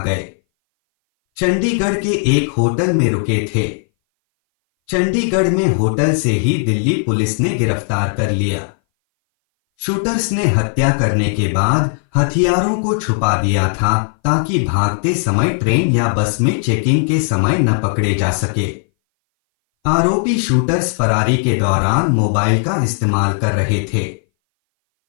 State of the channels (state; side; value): silent; right; 60 dB below the other